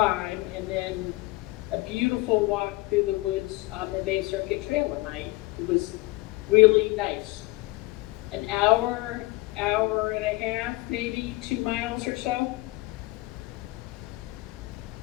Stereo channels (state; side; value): quieter; right; 21.6 dB